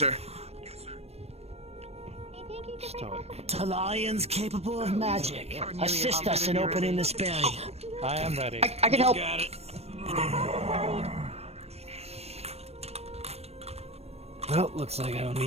Talarians capable of magic. Assist us in opening this barrier. I am ready. I can help. Got it. Well, looks like I don't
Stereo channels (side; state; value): left; late; 0.30 ms